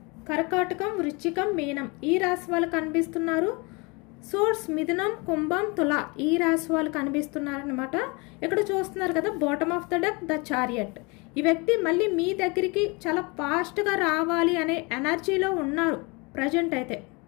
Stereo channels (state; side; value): quieter; right; 28.3 dB